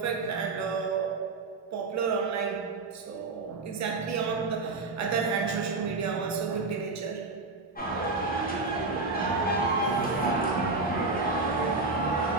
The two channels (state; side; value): quieter; left; 3.7 dB